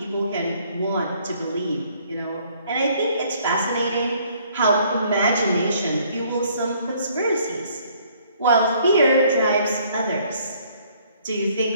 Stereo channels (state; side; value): inverted; both; correlation -0.62